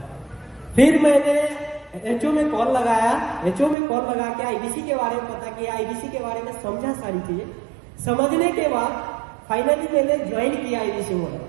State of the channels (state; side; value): drops out; left; at 3.8 s